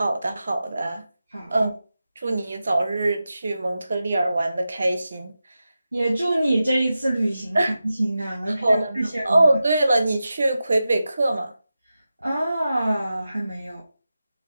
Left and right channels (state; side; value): inverted; both; correlation -0.92